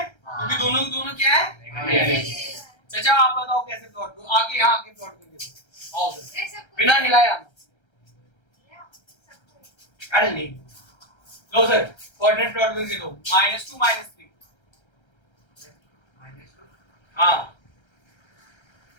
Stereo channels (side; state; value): right; late; 1.3 ms